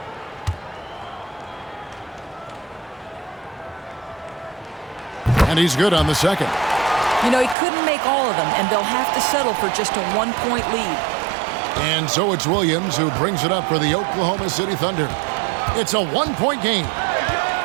And he's good on the second. You know, he couldn't make all of them, and they'll have to settle for just a 1-point lead. And so it's Williams who brings it up for the Oklahoma City Thunder. It's a 1-point game.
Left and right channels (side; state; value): left; drops out; at 7.6 s